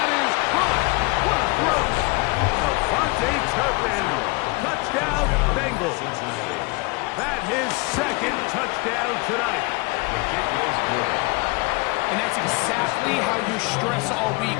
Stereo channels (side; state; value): right; quieter; 26.3 dB